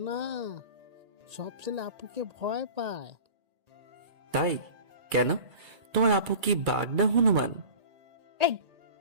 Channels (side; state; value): left; late; 1.8 ms